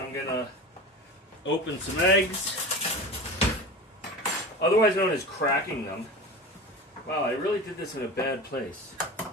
going to open some eggs. Otherwise known as cracking them. Wow, I really did this in a bad place.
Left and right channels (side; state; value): both; normal; correlation 0.31